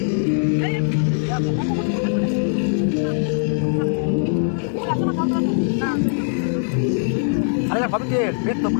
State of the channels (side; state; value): right; silent; 62 dB below the other